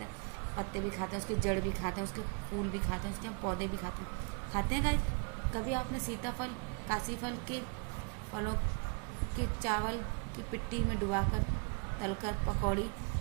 हैं पत्ते भी खाते हैं, उसके जड़ भी खाते हैं, उसके फूल भी खाते हैं, उसके हम पौधे भी खाते हैं गाइस। कभी आपने सीताफल, काशी फल के फलों के चावल की पिट्टी में डुबाकर तलकर पकौड़ी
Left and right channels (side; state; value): left; quieter; 36.2 dB